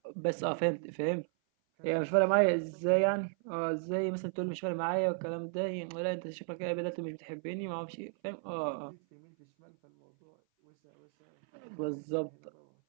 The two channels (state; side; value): silent; left; 55 dB below the other